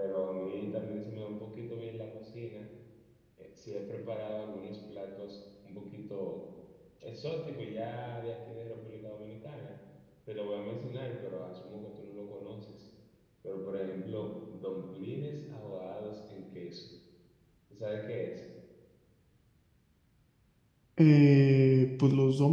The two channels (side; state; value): both; identical; correlation 1.00